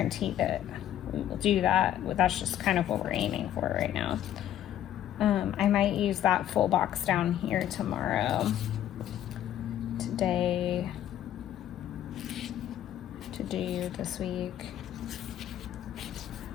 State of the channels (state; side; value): quieter; right; 11.5 dB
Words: that we'll do that. That's just kind of what we're aiming for right now. I might use that full box down here tomorrow. Today to do this week.